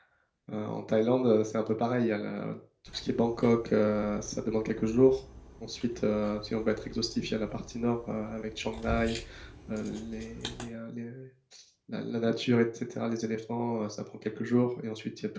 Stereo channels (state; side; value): identical; both; correlation 1.00